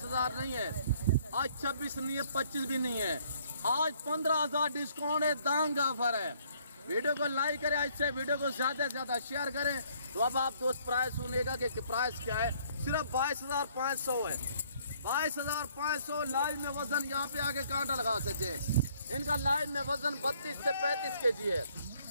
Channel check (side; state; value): both; inverted; correlation -0.63